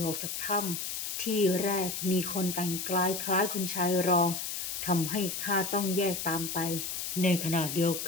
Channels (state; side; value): noise; left; hiss, 4 dB below the sound